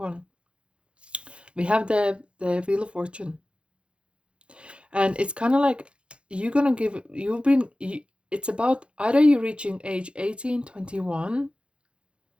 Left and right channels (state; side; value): late; left; 0.058 ms